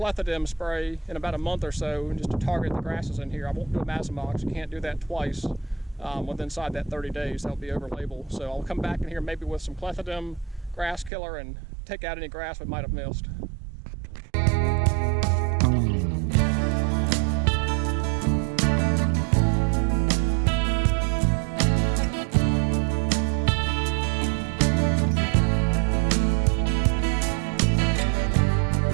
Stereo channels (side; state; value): left; drops out; at 11.1 s